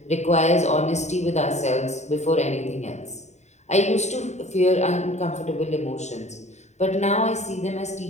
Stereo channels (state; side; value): late; right; 0.33 ms